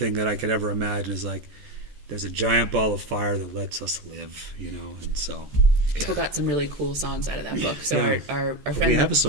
that I could ever imagine is like there's a giant ball of fire that lets us live, and so people got some really cool songs out of that book. So our friend, we have a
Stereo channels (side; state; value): left; late; 14 ms